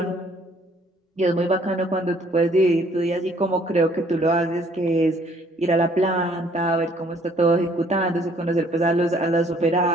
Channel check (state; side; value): normal; both; correlation 0.61